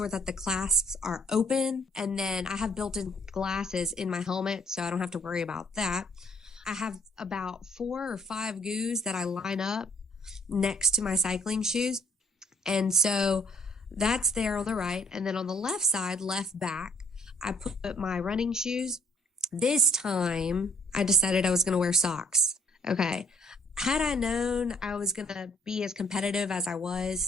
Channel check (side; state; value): both; normal; correlation 0.62